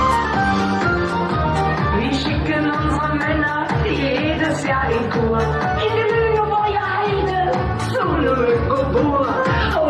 Wir schicken unsere Männer jedes Jahr in Kur. In die Lüneburger Heide, zu Lüneburg.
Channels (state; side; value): identical; both; correlation 1.00